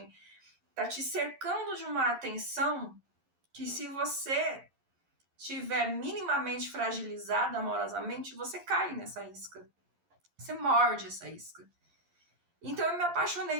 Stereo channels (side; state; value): left; late; 11 ms